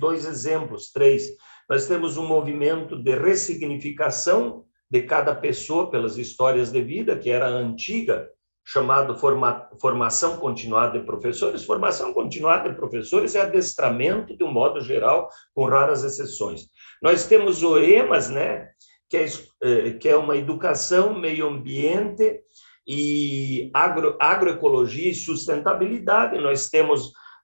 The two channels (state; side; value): inverted; both; correlation -1.00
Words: exemplos, 3. Nós temos um movimento de ressignificação de cada pessoa pelas histórias de vida, que era a antiga, chamado formação continuada de professores. Formação continuada de professores é adestramento, de um modo geral, com raras exceções. Nós temos o EMAS, né, que é uma educação, meio ambiente e agroecologia e sustentabilidade. Nós temos